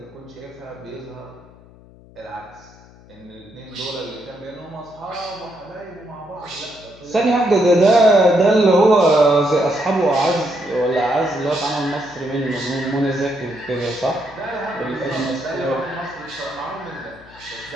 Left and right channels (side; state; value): left; noise; hum, 24 dB below the sound